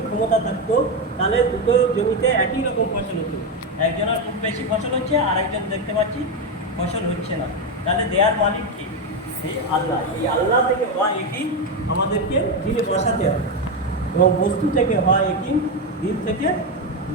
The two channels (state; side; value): normal; both; correlation 0.10